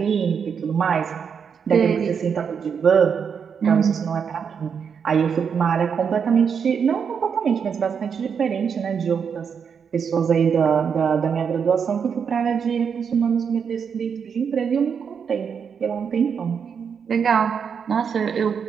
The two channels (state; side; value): quieter; left; 6.8 dB